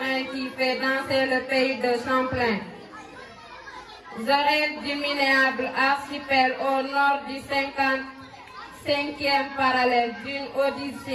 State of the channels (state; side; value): identical; both; correlation 1.00